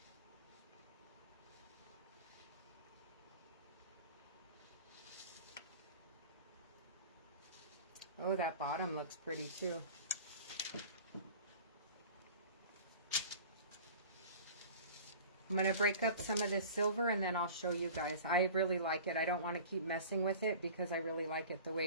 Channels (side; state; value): both; inverted; correlation -0.41